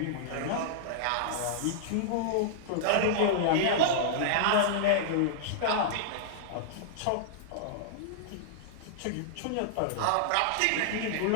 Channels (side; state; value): both; different; correlation -0.02